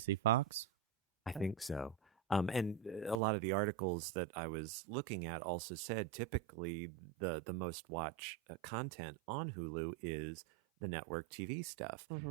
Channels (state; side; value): drops out; left; at 3.2 s